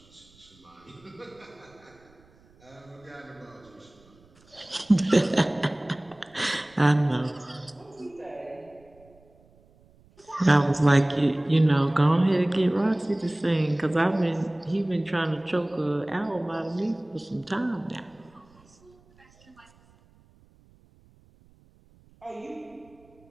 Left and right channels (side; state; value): right; noise; rumble, 30 dB below the sound